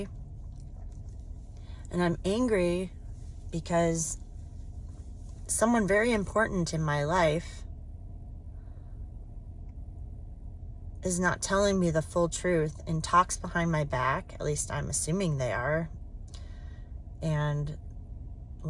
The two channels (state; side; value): identical; both; correlation 1.00